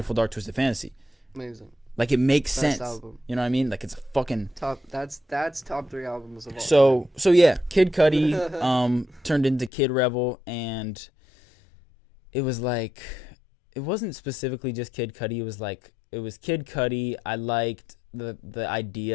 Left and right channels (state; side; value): drops out; right; at 9.7 s